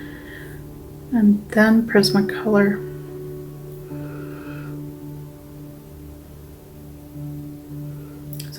And then Prismacolor.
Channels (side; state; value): both; identical; correlation 1.00